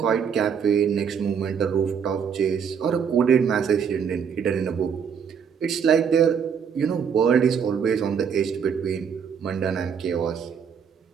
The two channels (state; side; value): quieter; left; 7.1 dB